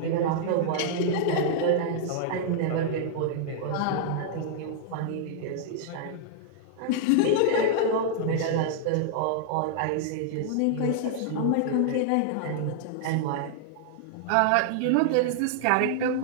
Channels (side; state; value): both; different; correlation -0.01